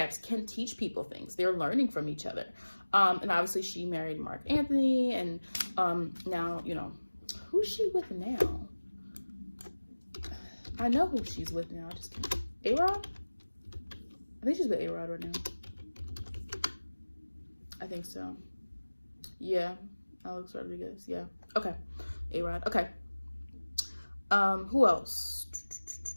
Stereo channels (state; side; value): inverted; both; correlation -1.00